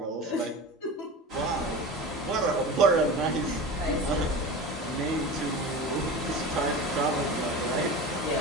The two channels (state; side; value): normal; both; correlation 0.30